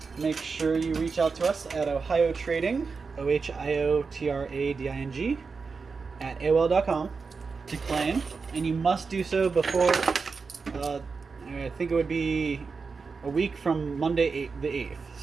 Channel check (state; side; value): quieter; left; 4.8 dB